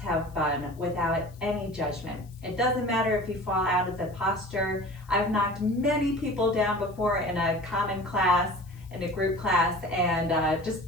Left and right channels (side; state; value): left; noise; hiss, 28 dB below the sound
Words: have fun without any judgment. It doesn't matter if you fall out of the posture. I've knocked many people down before in a common class, in a group class, and